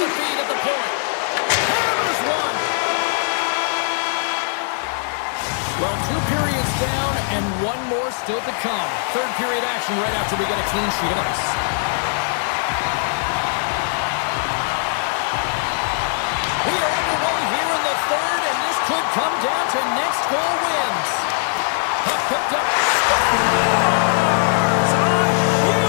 feed at the point. Hammers one. Well, 2 periods down and 1 more still to come. Third period action right after we get a clean sheet of ice.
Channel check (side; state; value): right; silent; 58 dB below the other